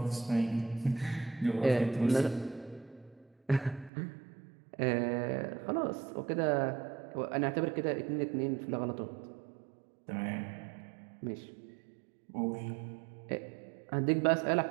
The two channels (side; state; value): left; drops out; at 3.9 s